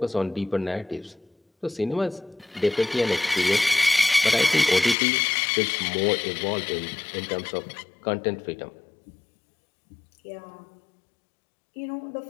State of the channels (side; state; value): right; drops out; at 5.0 s